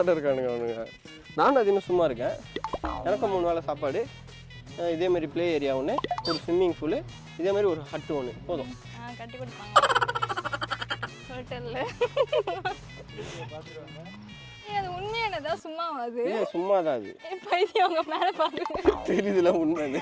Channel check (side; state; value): both; identical; correlation 1.00